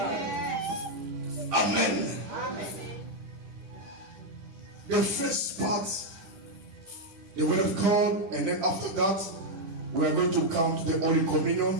Amen. The first part, the word of God, and then after that, we are going to come to the Holy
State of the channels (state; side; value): late; left; 10 ms